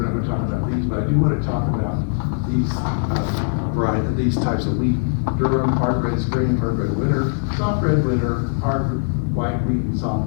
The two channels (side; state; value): right; silent; digital silence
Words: not gonna talk about these, but I do wanna talk about these types of wheat: durum, hard red spring, hard red winter, soft red winter, hard white wheat, and soft